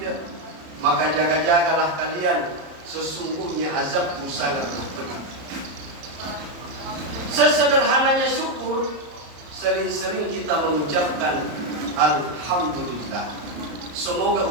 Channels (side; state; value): left; late; 34 ms